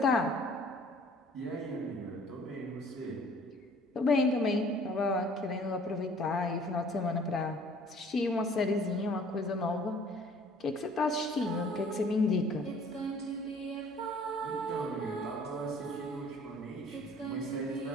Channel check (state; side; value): normal; both; correlation 0.53